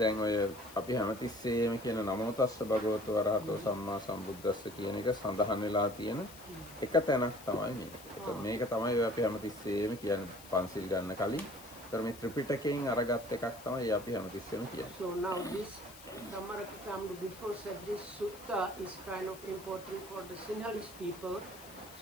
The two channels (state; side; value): noise; left; hiss, 18 dB below the sound